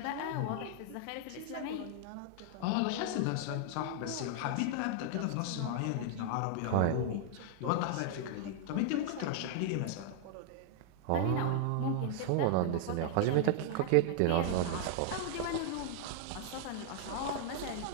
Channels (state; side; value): different; both; correlation -0.01